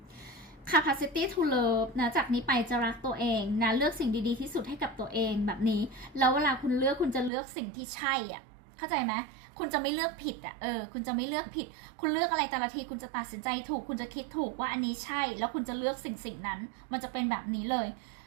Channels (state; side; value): drops out; left; at 7.3 s